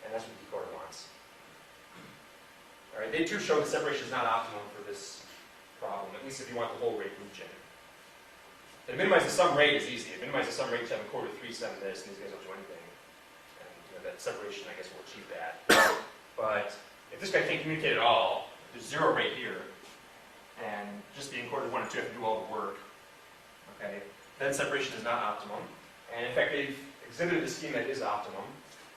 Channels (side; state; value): both; identical; correlation 1.00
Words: and that's what the decoder wants. All right. They too show that separation is not optimum for this problem, at least if you want the whole rate region. And minimize the sum rate is easy. If minimize the sum rate, you have a quarter 3 sum this, and these guys don't do anything. And that separation, I guess, will achieve that. But if this guy can't communicate at all, there's 0 right here, and just being quarter 1 and 2 have to do all the work, okay, then separation is not optimum. And in fact, they've exhibited a scheme that is optimum,